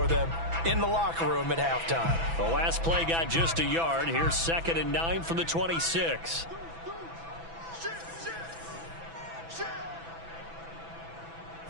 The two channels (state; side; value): late; left; 6.0 ms